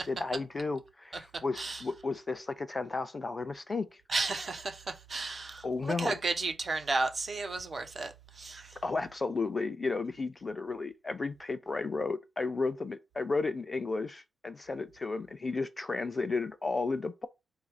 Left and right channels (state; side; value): normal; both; correlation 0.90